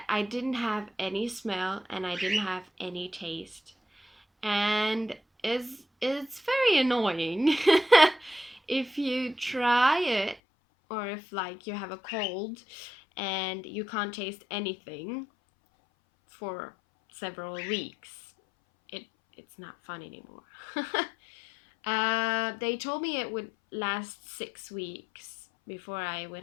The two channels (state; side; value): drops out; right; at 10.4 s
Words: I didn't have any smell and I didn't have any taste. And it's very annoying if you try it, or if like you have a cold and you can't taste anything for several weeks. It it's not fun anymore. They told me it would last 6 weeks before I